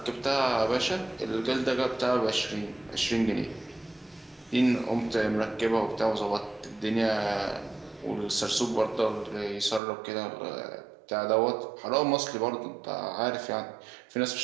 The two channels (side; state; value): left; drops out; at 9.8 s